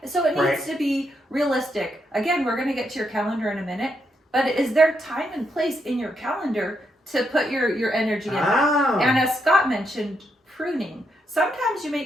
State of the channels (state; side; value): normal; both; correlation 0.79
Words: So it needs to be realistic. Again, we're going to get to your calendar in a minute, but is there time and place in your calendar to put your energy in that? And as Scott mentioned, pruning. Sometimes you